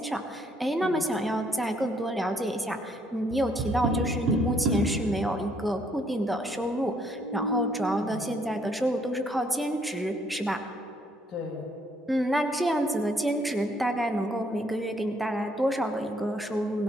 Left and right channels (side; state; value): both; normal; correlation 0.68